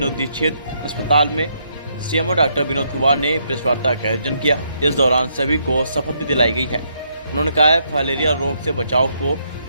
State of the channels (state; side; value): inverted; both; correlation -0.75